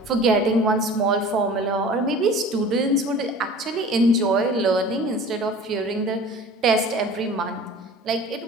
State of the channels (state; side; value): normal; both; correlation 0.42